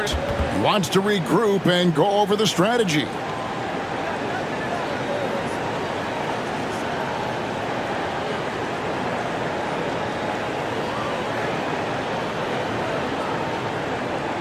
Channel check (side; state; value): both; identical; correlation 1.00